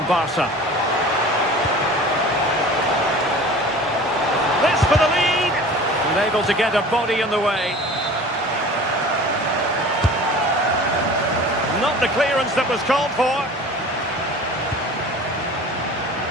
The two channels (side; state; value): both; normal; correlation 0.41